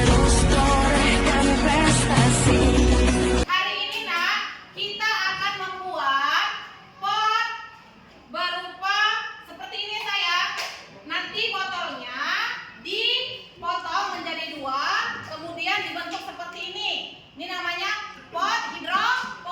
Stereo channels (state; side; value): identical; both; correlation 1.00